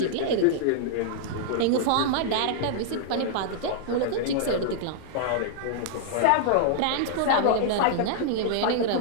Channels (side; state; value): both; different; correlation -0.01